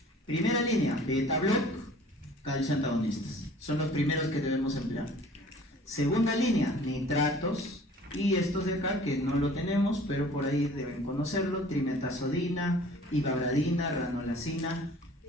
Primera línea, beta-block, calcio antagonistas. Son los primeros que debemos emplear. Segunda línea, nitratos. Y estos de acá, que no lo tenemos, pero por ahí deben conocerlo, trimetazodina, ivabradina, ranolacina,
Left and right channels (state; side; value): normal; both; correlation 0.49